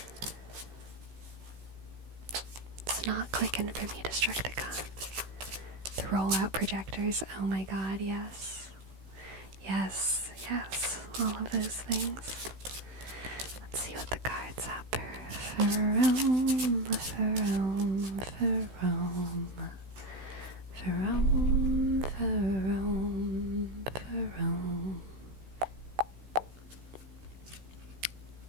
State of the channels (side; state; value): left; late; 16 ms